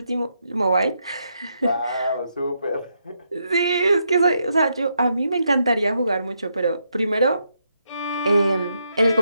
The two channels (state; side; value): inverted; both; correlation -0.79